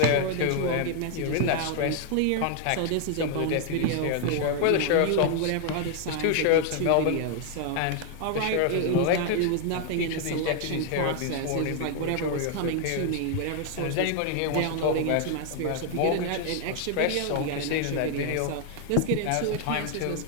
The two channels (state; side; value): different; both; correlation 0.00